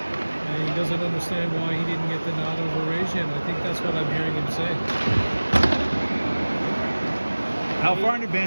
he doesn't understand why he didn't get the nod over Rajan. I think that's what I'm hearing him say. How far in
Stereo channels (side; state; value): both; inverted; correlation -1.00